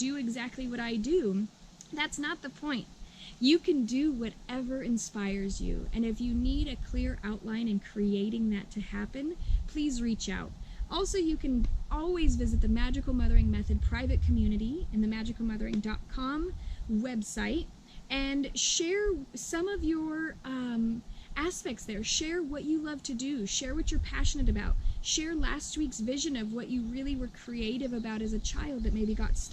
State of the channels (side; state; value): both; identical; correlation 1.00